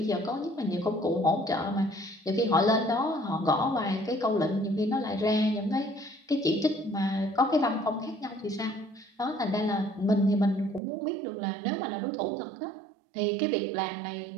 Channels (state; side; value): drops out; left; at 10.8 s